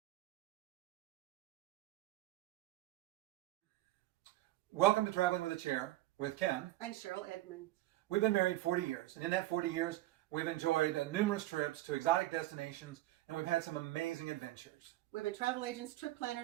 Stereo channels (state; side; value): quieter; left; 16.7 dB